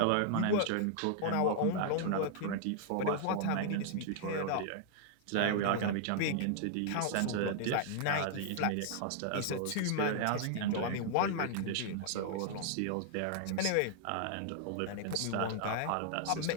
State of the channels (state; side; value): different; both; correlation -0.01